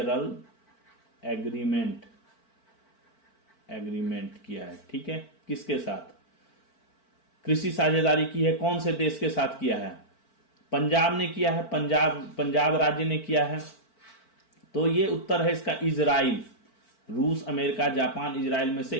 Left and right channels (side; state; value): right; late; 4.5 ms